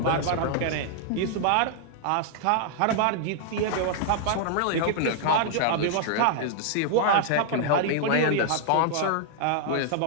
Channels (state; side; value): different; both; correlation -0.01